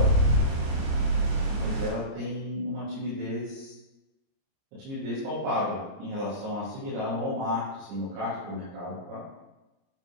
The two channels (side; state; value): left; late; 30 ms